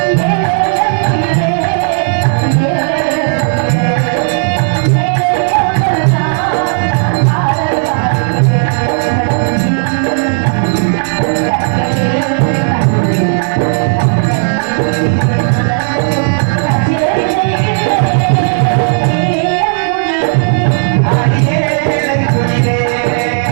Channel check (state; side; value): silent; left; 68 dB below the other